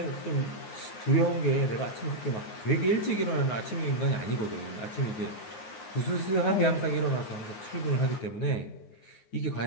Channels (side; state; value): right; late; 9.4 ms